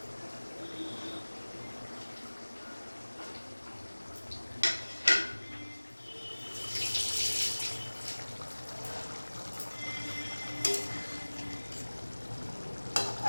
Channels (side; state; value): both; inverted; correlation -1.00